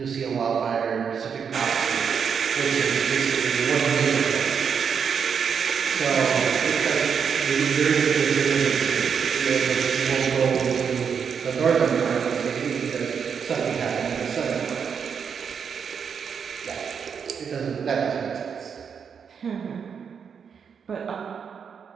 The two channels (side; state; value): left; quieter; 6.8 dB